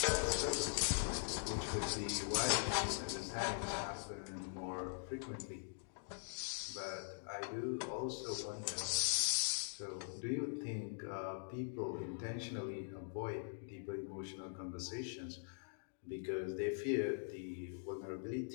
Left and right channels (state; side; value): silent; right; digital silence